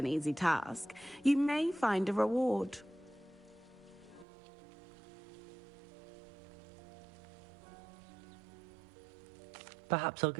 easy task, you may find a reward. Perhaps I'll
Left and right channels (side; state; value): left; drops out; at 4.2 s